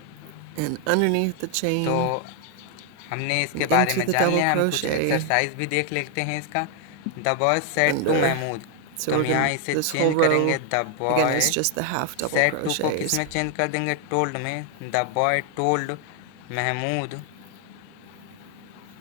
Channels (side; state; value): both; different; correlation 0.00